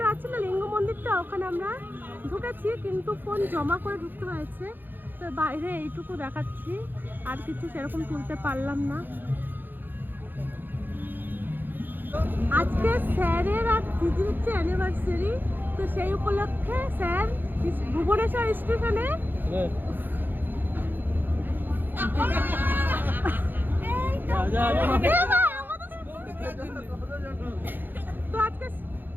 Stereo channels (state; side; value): late; left; 0.091 ms